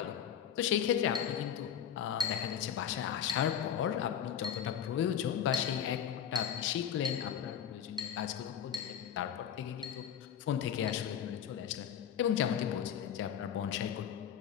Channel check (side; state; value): right; quieter; 9.0 dB